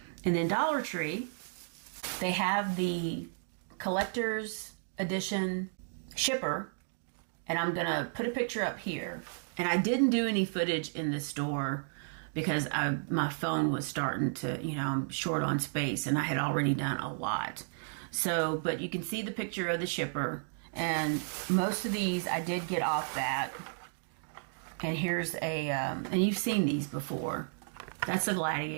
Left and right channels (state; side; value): silent; left; digital silence